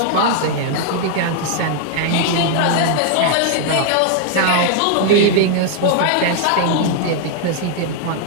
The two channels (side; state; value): both; different; correlation 0.00